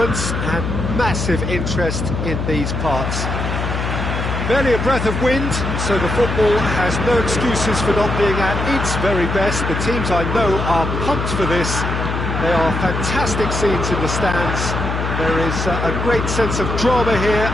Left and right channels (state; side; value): noise; left; hum, 2 dB below the sound